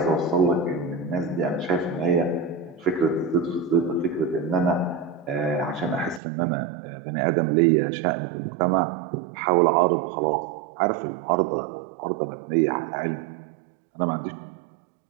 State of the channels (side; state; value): left; drops out; at 6.2 s